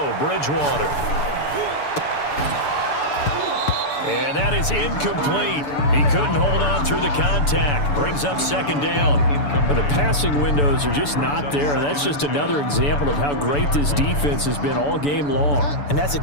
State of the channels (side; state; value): right; late; 6.9 ms